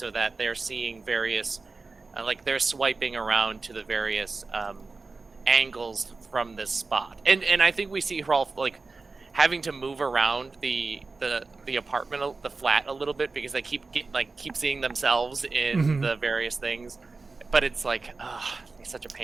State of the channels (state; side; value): quieter; left; 3.9 dB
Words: that they're seeing various, like they're swiping around to the various angles from this spot. And I think we see Hrolf like having to move around the apartment, the flat a little bit, because they keep seeing themselves in the various things. But it's like, it's such a